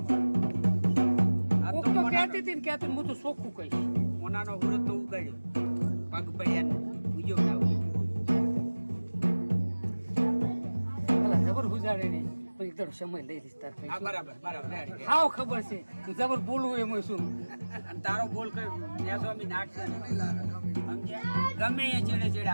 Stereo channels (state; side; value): inverted; both; correlation -1.00